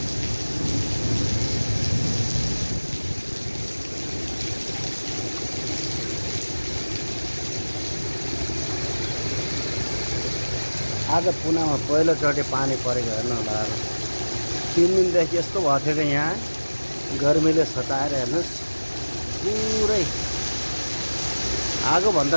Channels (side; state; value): both; inverted; correlation -1.00